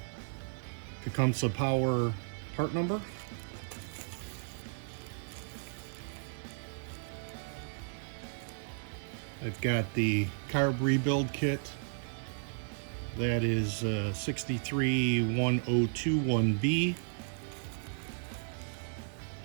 Tecumseh Power part number. I've got the carb rebuild kit. That is 631021B.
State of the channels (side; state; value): left; silent; digital silence